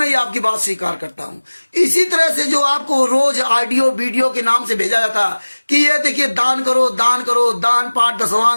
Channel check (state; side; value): inverted; both; correlation -1.00